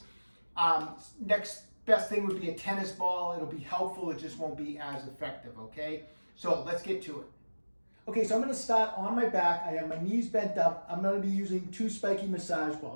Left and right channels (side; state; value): both; inverted; correlation -1.00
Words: next best thing would be a tennis ball. It'll be helpful, it just won't be as effective, okay? So let's get to it. Okay, so I'm going to start on my back. I have my knees bent up. I'm going to be using two spiky massage